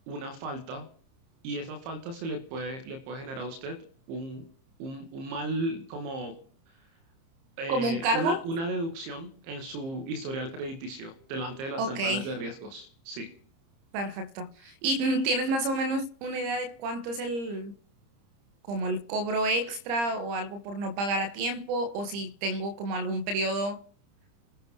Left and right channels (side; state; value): left; late; 30 ms